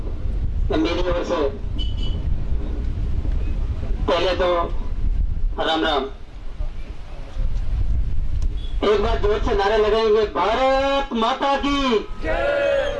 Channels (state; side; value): identical; both; correlation 1.00